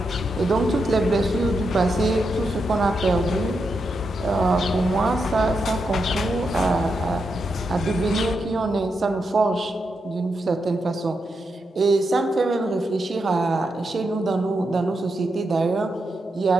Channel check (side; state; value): both; normal; correlation 0.85